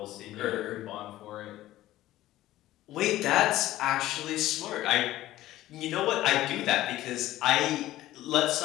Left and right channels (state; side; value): quieter; right; 15.2 dB